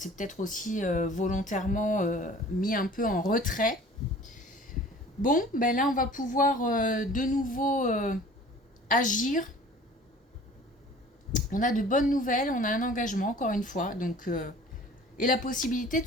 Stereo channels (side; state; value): both; normal; correlation 0.47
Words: peut-être aussi volontairement mis un peu en retrait. Bon, ben là on va pouvoir de nouveau agir. On a de bonnes nouvelles, on a un engagement encore une fois, donc et la possibilité de